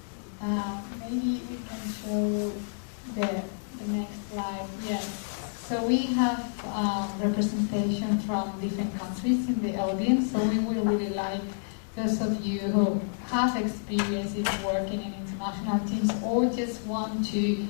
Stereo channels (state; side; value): silent; right; digital silence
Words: Maybe we can show the next slide. Yes. So we have representation from different countries in the audience. So we will really like those of you who have experience in working in international teams or just want to